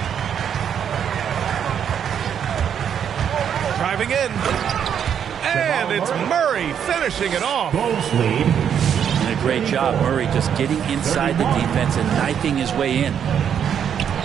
Driving in. And it's Murray finishing it off. And a great job, Murray, just getting inside the defense and knifing his way in.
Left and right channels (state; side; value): quieter; left; 8.5 dB